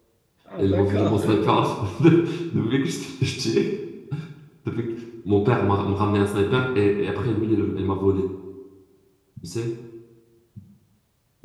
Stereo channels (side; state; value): both; identical; correlation 1.00